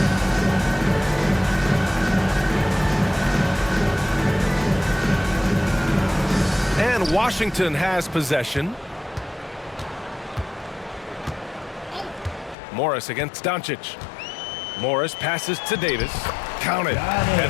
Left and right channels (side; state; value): right; drops out; at 12.6 s